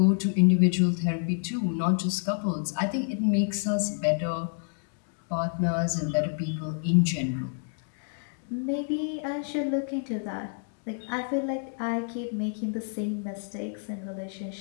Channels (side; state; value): right; silent; 59 dB below the other